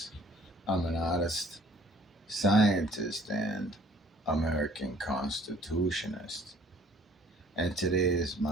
I'm an artist, scientist, and American Constitutionist. And today is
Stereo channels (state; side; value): normal; both; correlation 0.55